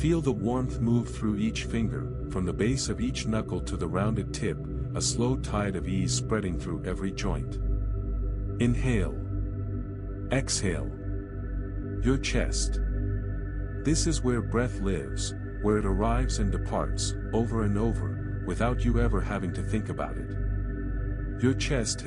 the warmth move through each finger, from the base of each knuckle to the rounded tip, a slow tide of ease spreading through every joint. Inhale. Exhale. Your chest. This is where breath lives, where it arrives and departs, over and over, without you ever having to think about it. Your chest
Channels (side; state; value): both; identical; correlation 1.00